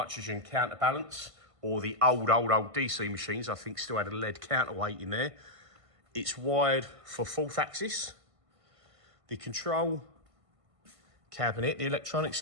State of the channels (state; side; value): late; left; 1.5 ms